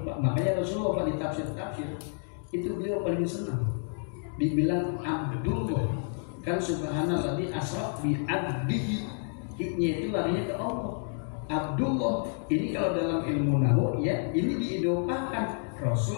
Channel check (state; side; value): silent; right; 58 dB below the other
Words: Makanya Rasulullah di tafsir itu beliau paling senang. Dibilang Abdullah, kan subhanallah di asraf bi abdihi, hiknya itu larinya ke Allah. Abdullah ini kalau dalam ilmu nahwu ya ini diidopakan